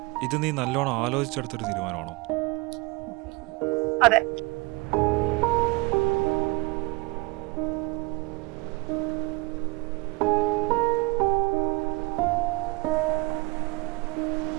ഇത് നീ നല്ലോണം ആലോചിച്ചെടുത്തൊരു തീരുമാനമാണോ? അതെ.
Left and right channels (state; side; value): quieter; left; 24.2 dB